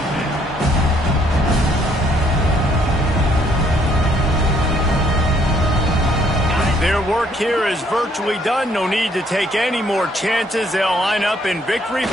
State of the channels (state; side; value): normal; both; correlation 0.67